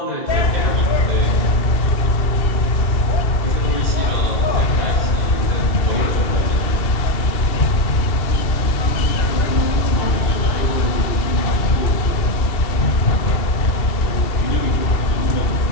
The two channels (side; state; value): right; late; 2.7 ms